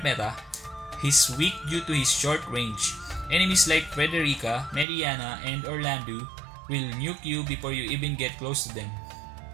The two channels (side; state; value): left; drops out; at 4.9 s